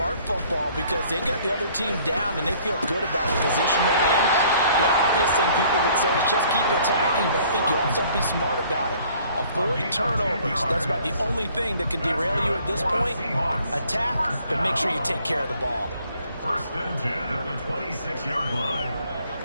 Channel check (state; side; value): inverted; both; correlation -0.58